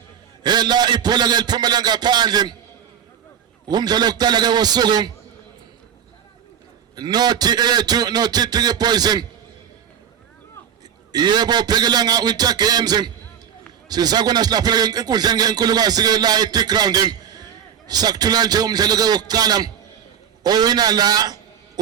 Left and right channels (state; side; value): quieter; left; 8.5 dB